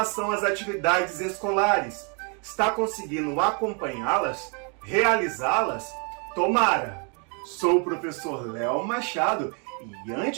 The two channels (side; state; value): left; quieter; 36.7 dB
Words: às atividades escolares, está conseguindo acompanhá-las? Realizá-las? Tomara! Sou o professor Léo Machado e